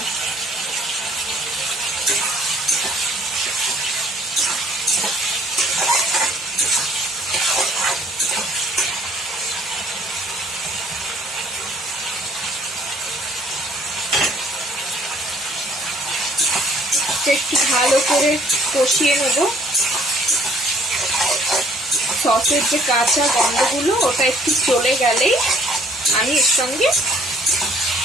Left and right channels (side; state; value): both; normal; correlation 0.60